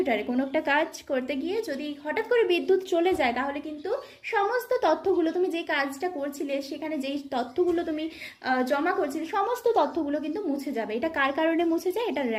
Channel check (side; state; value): both; identical; correlation 1.00